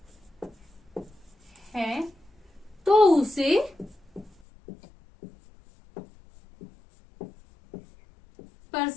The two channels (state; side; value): drops out; right; at 4.3 s